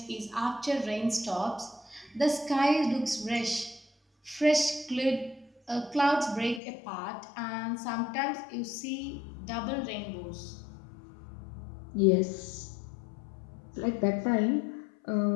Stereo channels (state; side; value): drops out; right; at 6.6 s